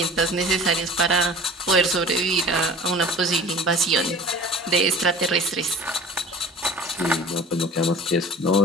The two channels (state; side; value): normal; both; correlation 0.42